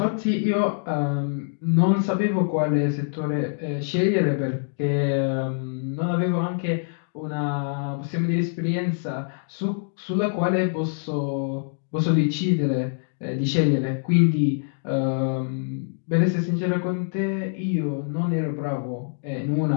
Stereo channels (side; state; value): right; silent; digital silence